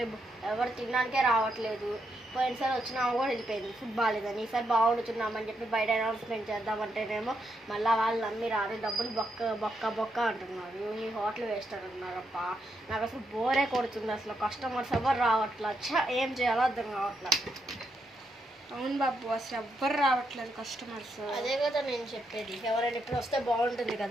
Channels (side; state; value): both; normal; correlation 0.81